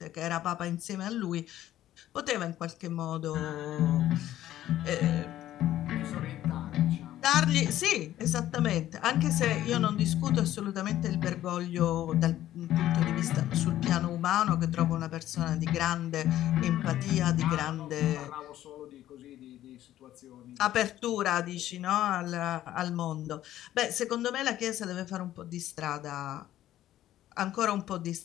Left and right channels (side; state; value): right; quieter; 13.2 dB